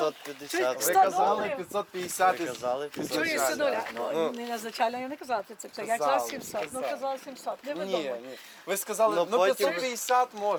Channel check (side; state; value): both; identical; correlation 1.00